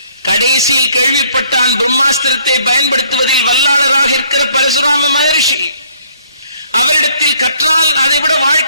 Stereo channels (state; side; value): inverted; both; correlation -0.63